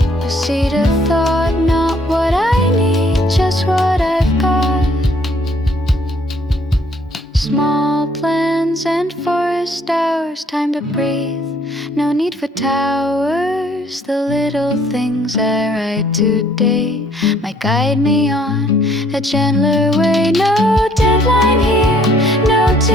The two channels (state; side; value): normal; both; correlation 0.63